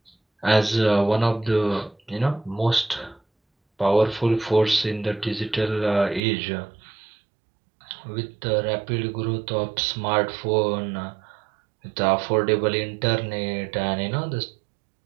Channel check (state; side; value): drops out; left; at 6.2 s